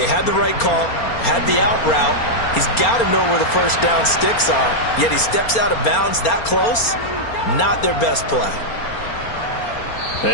had the right call, had the out route. He's got to know where the first down sticks are. Yet he steps out of bounds that close. Not their best play.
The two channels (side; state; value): right; late; 4.3 ms